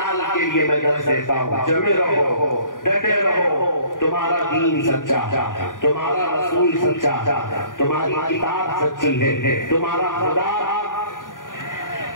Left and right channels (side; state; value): right; late; 0.89 ms